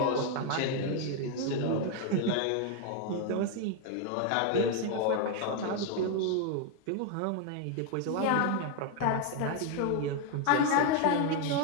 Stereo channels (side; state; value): both; different; correlation 0.01